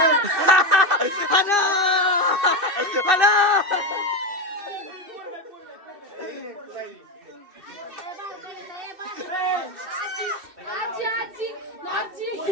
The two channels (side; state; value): left; late; 2.6 ms